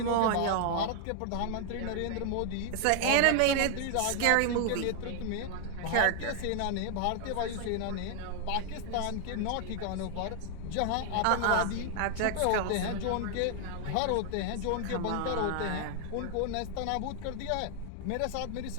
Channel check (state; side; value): different; both; correlation 0.00